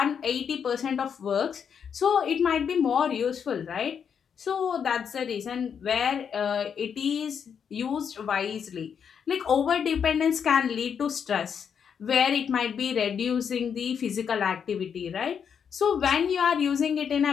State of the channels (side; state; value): right; quieter; 7.3 dB